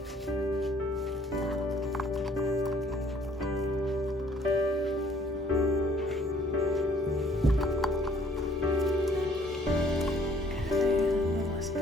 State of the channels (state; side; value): normal; both; correlation 0.59